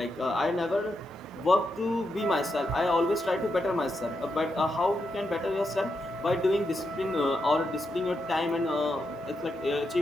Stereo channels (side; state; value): both; normal; correlation 0.84